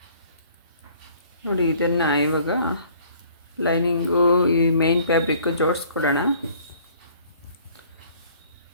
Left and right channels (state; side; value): inverted; both; correlation -0.56